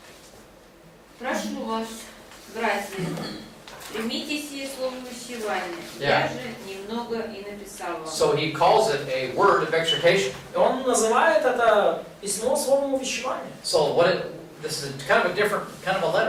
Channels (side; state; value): both; identical; correlation 1.00